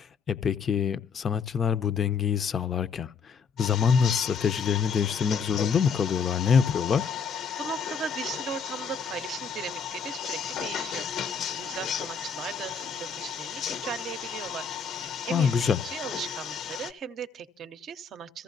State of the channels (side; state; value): right; quieter; 5.7 dB